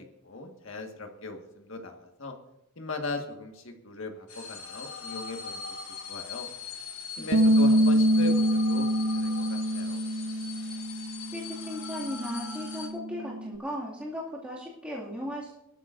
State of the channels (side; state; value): both; normal; correlation 0.51